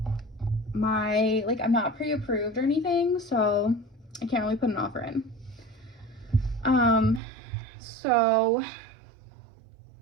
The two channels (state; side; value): drops out; left; at 7.2 s